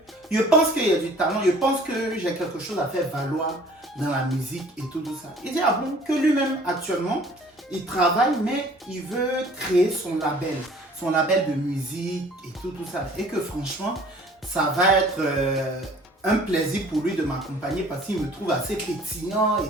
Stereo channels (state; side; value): normal; both; correlation 0.52